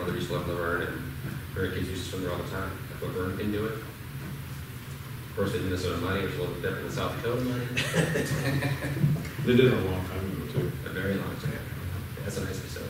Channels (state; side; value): identical; both; correlation 1.00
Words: used to live in Laverne, and her kids used to swim there all the time. If Laverne can do it. Of course, they did Minnesota money, which is a little bit different than South Dakota money. They did it a long time ago, too. A very long time. That's a nice